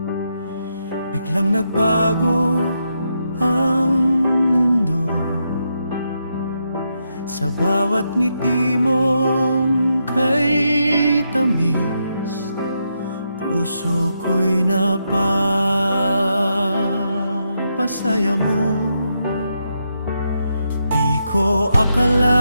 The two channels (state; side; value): inverted; both; correlation -0.82